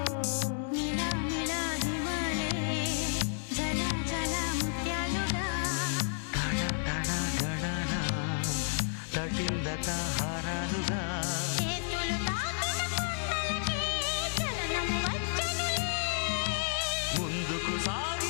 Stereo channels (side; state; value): right; silent; digital silence